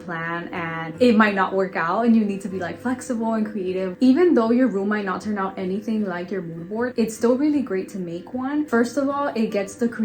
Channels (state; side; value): identical; both; correlation 1.00